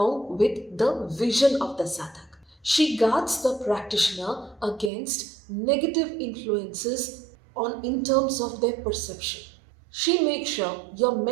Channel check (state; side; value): drops out; left; at 4.9 s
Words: with the vision of the sadhak. She guards the practitioner against negative influences on in terms of their perception. She makes sure your